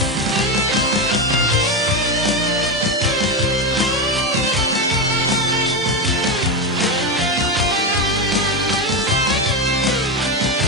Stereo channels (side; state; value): both; normal; correlation 0.13